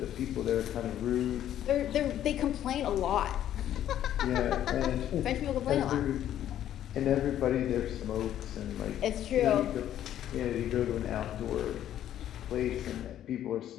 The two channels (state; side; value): quieter; right; 11.4 dB